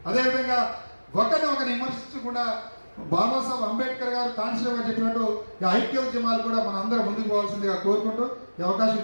అదేవిధంగా ఒకరిని విమర్శించకుండా బాబాసాహెబ్ అంబేద్కర్ గారు కాన్స్టిట్యూషన్ గారు చెప్పినట్టు ఈ ఐక్య ఉద్యమాలు కూడా మన అందరం ముందుకు పోవాల్సిందిగా కోరుకుంటూ ఈ అవకాశం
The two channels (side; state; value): both; inverted; correlation -1.00